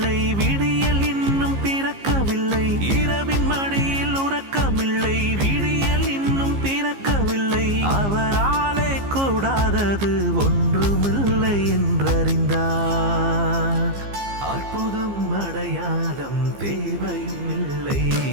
விடியல் இன்னும் பிறக்கவில்லை. இரவின் மடியில் உறக்கமில்லை, விடியல் இன்னும் பிறக்கவில்லை. அவராலே கூடாதது ஒன்றுமில்லை என்றறிந்தார். அற்புதம் அடையாளம் தேவையும் இல்லை.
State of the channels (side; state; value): left; late; 15 ms